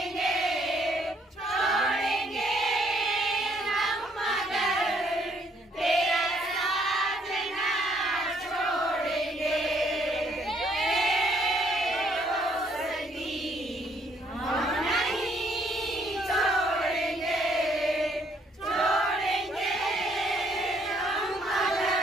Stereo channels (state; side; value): normal; both; correlation 0.67